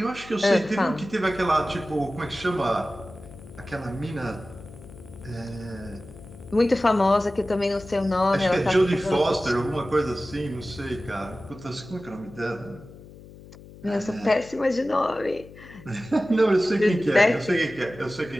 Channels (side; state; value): left; noise; hum, 19 dB below the sound